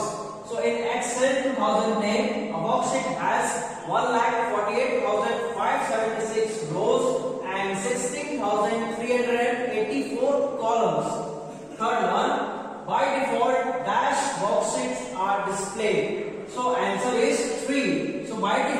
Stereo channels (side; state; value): both; identical; correlation 1.00